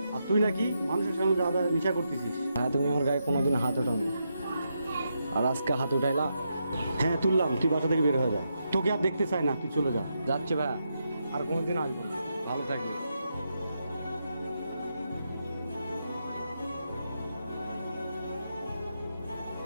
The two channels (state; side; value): inverted; both; correlation -0.83